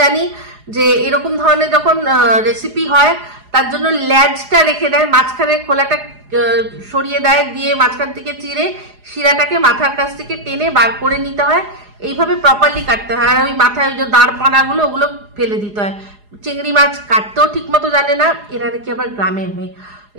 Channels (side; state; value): left; late; 4.8 ms